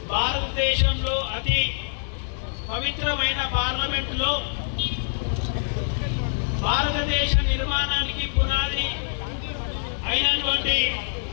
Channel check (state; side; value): silent; right; 62 dB below the other